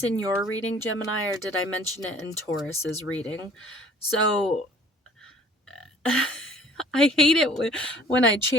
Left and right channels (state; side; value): normal; both; correlation 0.52